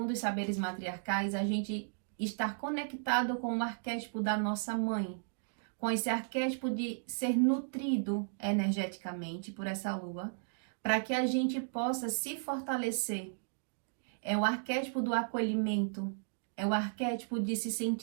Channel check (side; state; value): left; silent; digital silence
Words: os saberes matriarcais, a gente estar conectado com o arquétipo da nossa mãe, com esse arquétipo de ser nutrido energeticamente por essa lua, para que a gente possa se fortalecer. É o arquétipo do acolhimento, é o arquétipo de se